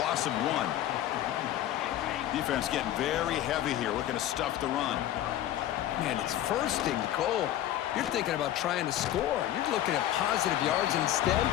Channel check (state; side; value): quieter; right; 12.6 dB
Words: of 1. Defense getting very heavy here, looking to stuff the run. Man, it's 1st and goal. You're thinking about trying to score. You're looking at positive yards, and instead,